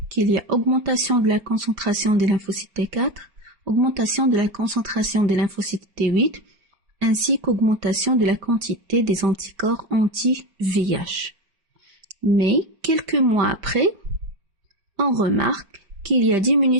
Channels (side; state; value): left; late; 5.1 ms